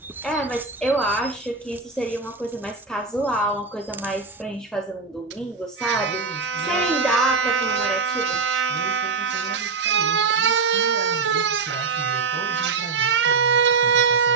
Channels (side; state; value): left; quieter; 4.7 dB